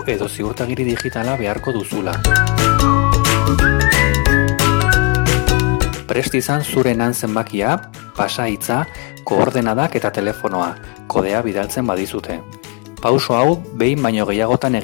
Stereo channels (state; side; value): quieter; right; 27.3 dB